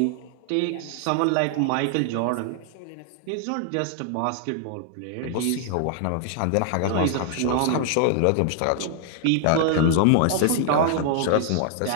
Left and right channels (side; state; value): both; different; correlation 0.00